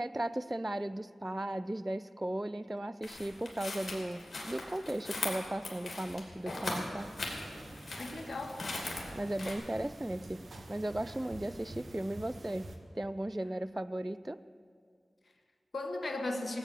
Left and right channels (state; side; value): normal; both; correlation 0.96